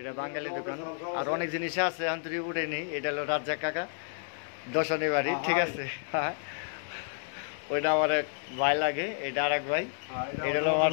বাঙালি দোকান, আর অনেক জিনিস আছে আন্তরিক উঠেনি। এটা হলো রাজ্জাক কাকা দশনী বাড়ি, ঠিক আছে। হ্যাঁ, ওইটা আমার এক ভাই লাগে, এটা আর এক ভাই। এটা হলো আমার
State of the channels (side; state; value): right; silent; digital silence